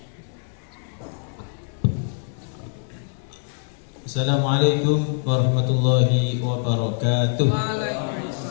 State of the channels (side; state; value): right; silent; digital silence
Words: Assalamualaikum warahmatullahi wabarakatuh.